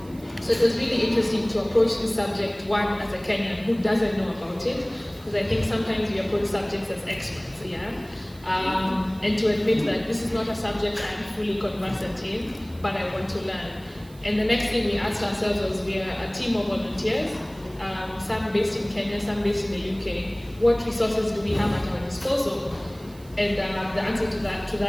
So it was really interesting to approach this subject, one, as a Kenyan who doesn't know about it, because I think sometimes we approach subjects as experts, and to admit that this is not a subject I'm fully conversant in, but I want to learn. And the next thing we asked ourselves was, we are a team of volunteers, some based in Kenya, some based in the UK. What resources do we have at our disposal? And the answer to that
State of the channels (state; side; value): noise; right; hiss, 25 dB below the sound